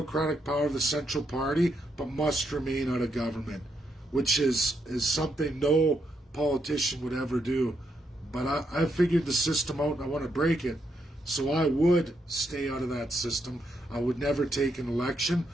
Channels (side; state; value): both; normal; correlation 0.79